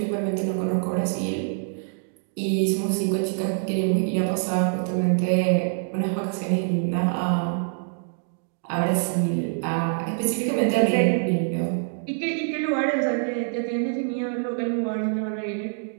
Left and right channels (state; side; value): silent; left; digital silence